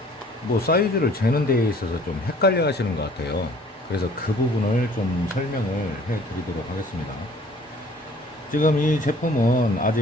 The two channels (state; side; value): normal; both; correlation 0.54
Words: 뭐 사이즈를 재는 데에 있어서 좀 헷갈려 하시는 것 같아요. 그래서 그 부분을 좀 설명을 해 드리도록 하겠습니다. 지금 이 제품은